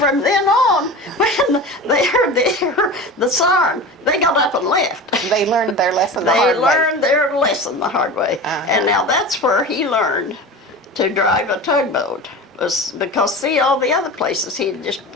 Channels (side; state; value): both; normal; correlation 0.31